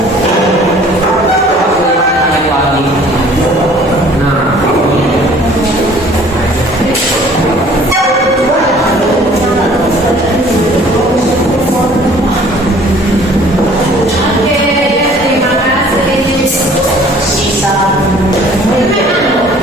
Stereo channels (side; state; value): both; normal; correlation 0.53